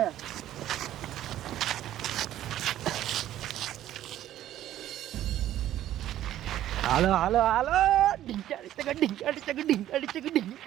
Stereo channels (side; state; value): left; quieter; 12.7 dB